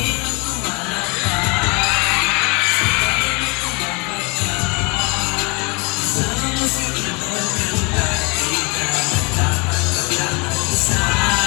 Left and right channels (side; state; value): right; quieter; 30.2 dB